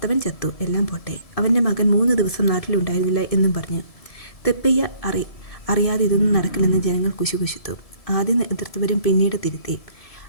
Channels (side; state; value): right; late; 1.7 ms